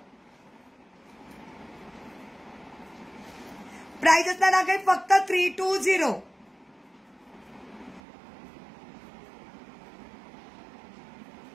प्राइस असणार आहे फक्त 320.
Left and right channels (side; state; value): left; drops out; at 8.0 s